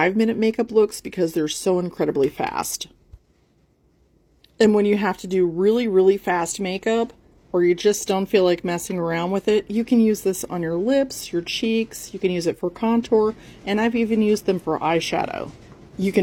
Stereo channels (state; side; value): identical; both; correlation 1.00